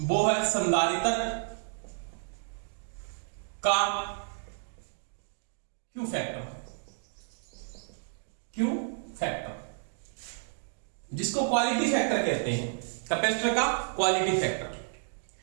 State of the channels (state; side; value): silent; left; digital silence